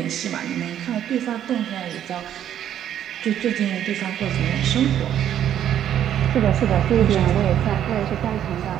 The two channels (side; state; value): left; quieter; 10.4 dB